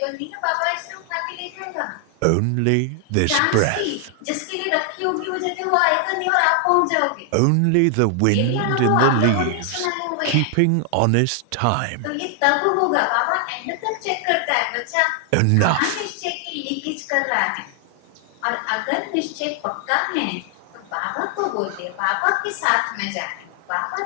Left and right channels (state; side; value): different; both; correlation 0.00